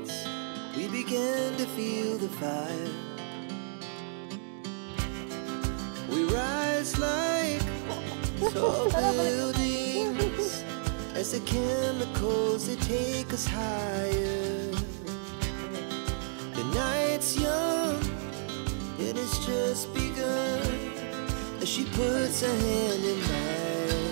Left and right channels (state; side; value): silent; left; digital silence